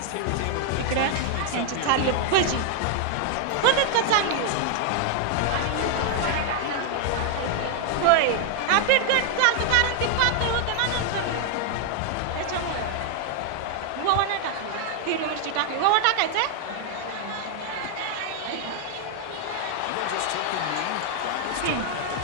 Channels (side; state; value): both; different; correlation 0.00